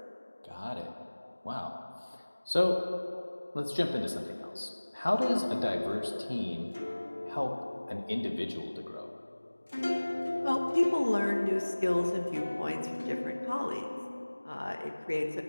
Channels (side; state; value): both; inverted; correlation -1.00